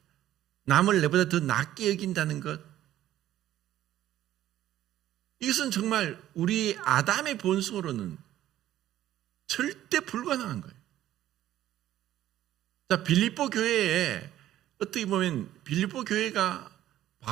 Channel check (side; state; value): left; quieter; 13.0 dB